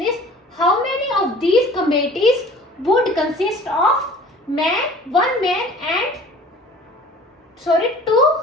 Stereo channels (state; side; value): normal; both; correlation 0.47